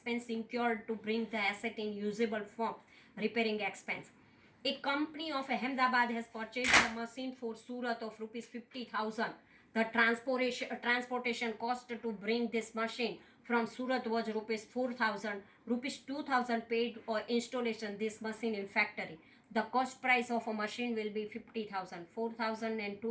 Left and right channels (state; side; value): identical; both; correlation 1.00